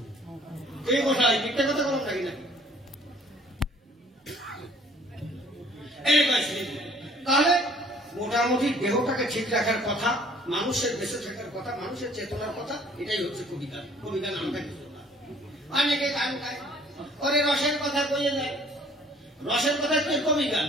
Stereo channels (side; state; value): both; normal; correlation 0.56